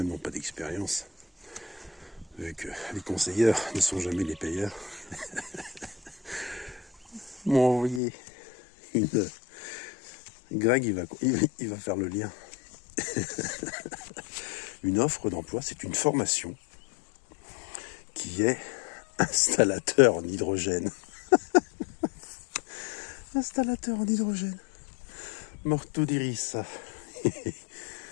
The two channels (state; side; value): drops out; right; at 8.0 s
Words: n'ont pas d'expérience, vu que les conseilleurs ne sont jamais les payeurs, m'ont envoyé une... Greg, il va faire le lien. Une offre d'emploi, c'est une formation qui est installateur en hydrogène. Installateur en hydrogène. Morto di rissa.